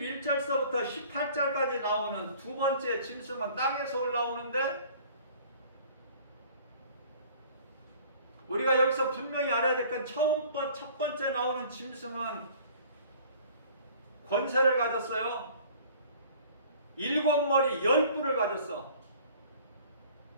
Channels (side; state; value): both; inverted; correlation -0.50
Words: 18절까지 나오는 두 번째 짐승은 땅에서 올라오는데, 우리가 여기서 분명히 알아야 될 건 첫 번째 나오는 짐승은 권세를 가졌어요. 7머리 10뿔을 가졌어.